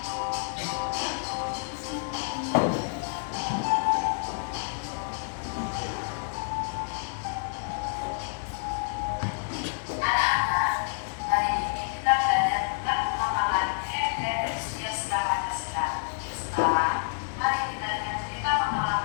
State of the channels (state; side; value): silent; right; digital silence